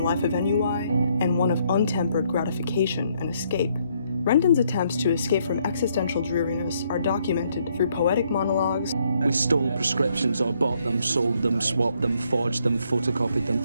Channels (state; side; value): inverted; both; correlation -0.71